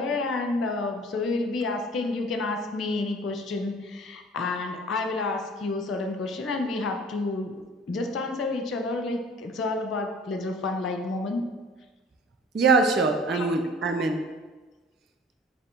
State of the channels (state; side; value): normal; both; correlation 0.47